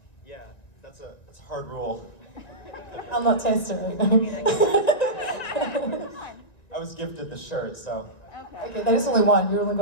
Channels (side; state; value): right; late; 1.9 ms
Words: Yeah, that's a hard rule. I'll not test it right now. I was gifted the shirt, so. Okay, that is only one. You only